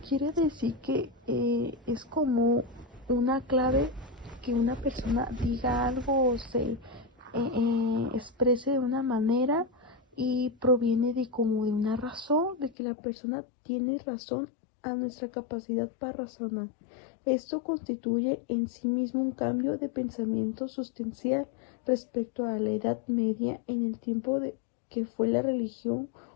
Quiere decir que es como una clave que una persona diga algo o se exprese de una manera y proviene de como de una razón, de que la persona tiene razón a nuestra capacidad para razonar. Esto constituye en sí mismo un cambio de pensamiento sustancial respecto a la Edad Media, en el tiempo de que fue la religión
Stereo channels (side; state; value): right; drops out; at 12.8 s